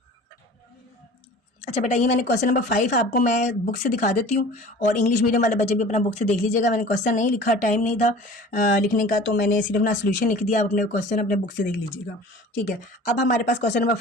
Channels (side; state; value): both; normal; correlation 0.43